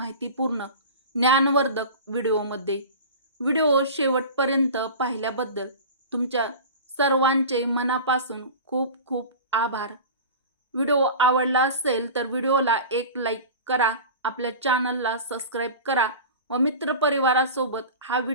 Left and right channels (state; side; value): inverted; both; correlation -0.33